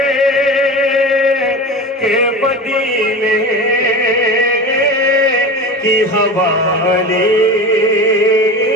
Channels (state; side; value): normal; both; correlation 0.30